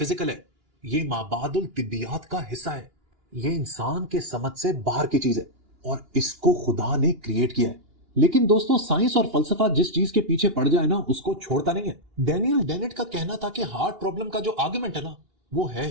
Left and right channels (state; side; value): late; left; 2.9 ms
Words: है, ये माबादुल तिब्बियात का हिस्सा है, ये इंसान के समझ से बाहर की चीज है और इसको खुदा ने क्रिएट किया है। लेकिन दोस्तों, साइंस और फलसफा जिस चीज के पीछे पड़ जाए ना, उसको छोड़ता नहीं है। डैनियल डेनेट का कहना था कि हार्ड प्रॉब्लम का जो आर्गुमेंट है ना, वो है